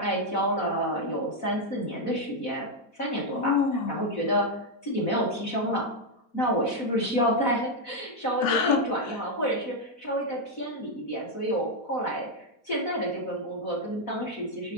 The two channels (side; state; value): right; late; 4.0 ms